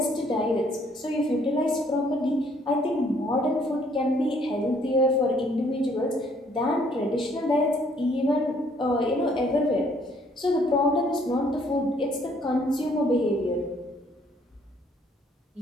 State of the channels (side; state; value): both; normal; correlation 0.64